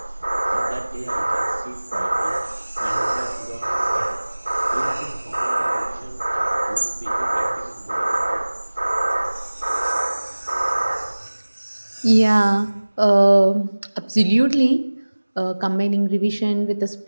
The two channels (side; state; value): both; inverted; correlation -1.00